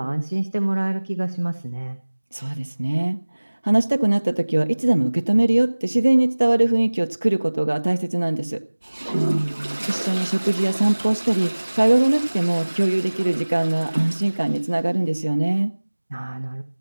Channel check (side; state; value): both; inverted; correlation -1.00